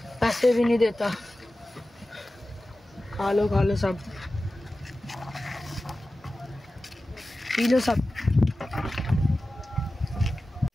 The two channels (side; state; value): both; normal; correlation 0.95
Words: पैसे भी नहीं देता। खा लो सब, पी लो सब।